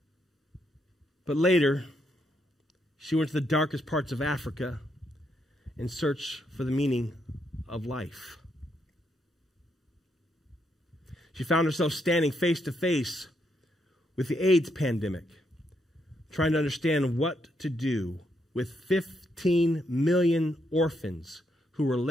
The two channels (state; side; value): normal; both; correlation 0.77